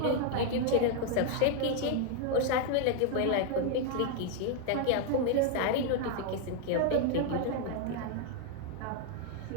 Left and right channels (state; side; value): different; both; correlation 0.00